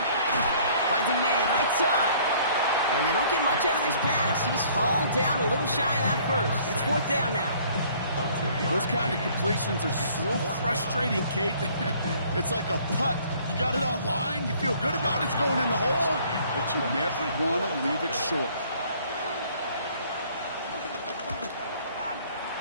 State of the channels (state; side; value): inverted; both; correlation -0.57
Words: Finds a man right side. And they don't get much out of this pass. He's hauled down a little shy of that first. It's fourth down now. Those kind of completions are so frustrating, Kate. It's like a putt. You got it on line, you feel good about it, it's going in the hole, but you never want to leave it short.